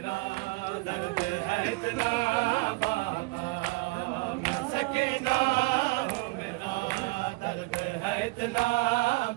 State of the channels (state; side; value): quieter; left; 23.6 dB